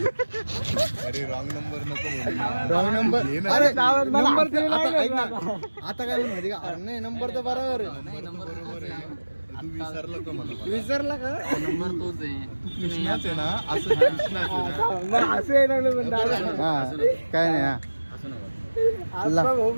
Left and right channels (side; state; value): both; inverted; correlation -1.00